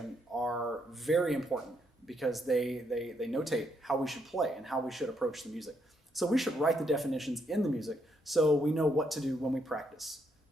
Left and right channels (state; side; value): normal; both; correlation 0.75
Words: are very important because they notate how we should play and how we should approach the music. So we should write the definitions in the music so we know what to do when we practice.